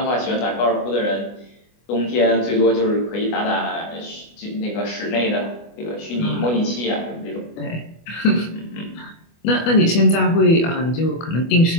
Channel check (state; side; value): late; right; 24 ms